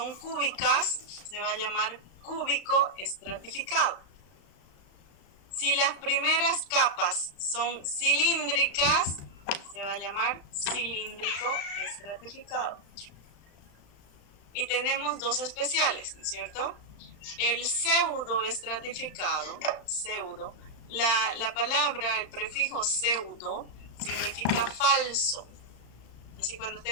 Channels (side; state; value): right; late; 35 ms